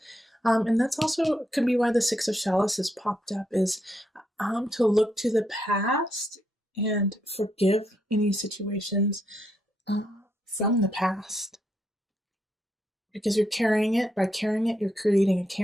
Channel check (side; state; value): both; normal; correlation 0.78